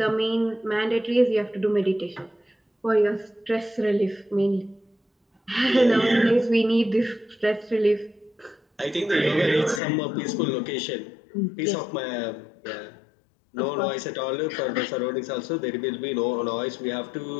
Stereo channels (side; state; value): right; drops out; at 9.8 s